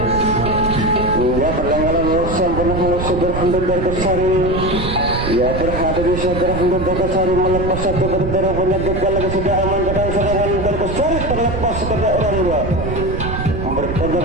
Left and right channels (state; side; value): noise; right; rumble, 4 dB below the sound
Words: Ya perlengkapan sempurna oleh saudara Handar besar ini. Ya terhadap saudara Handar besar melepas satu berdarah punya gagal lagi sudah aman dengan serangan Handar besar terlepas kepada orang dua.